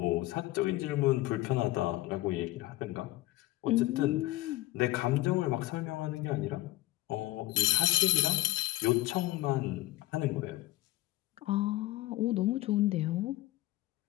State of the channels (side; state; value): right; quieter; 17.7 dB